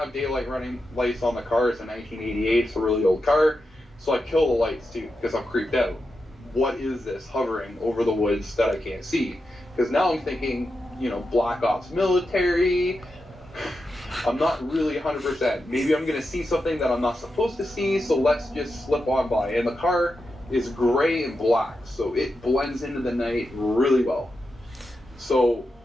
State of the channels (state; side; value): normal; both; correlation 0.88